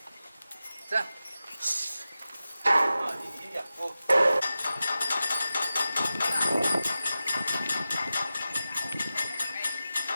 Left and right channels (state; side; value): inverted; both; correlation -0.93